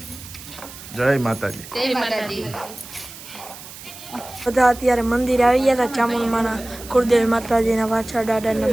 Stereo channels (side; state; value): right; noise; hiss, 15 dB below the sound